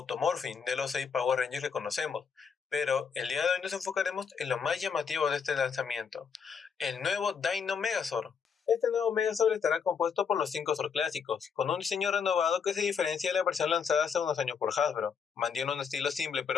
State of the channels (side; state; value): right; quieter; 6.4 dB